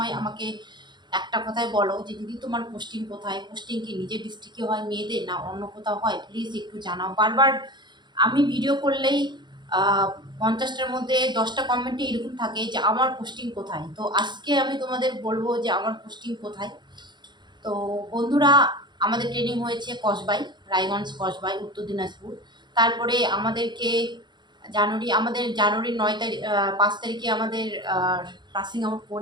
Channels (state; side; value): late; left; 0.22 ms